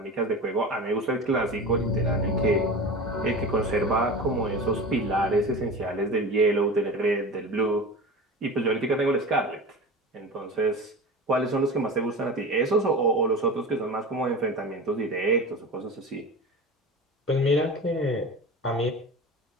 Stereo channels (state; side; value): normal; both; correlation 0.31